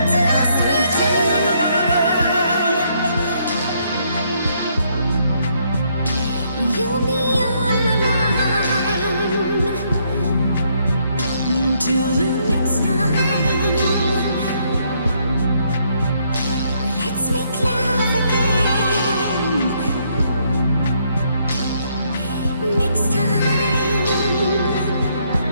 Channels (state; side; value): inverted; both; correlation -0.71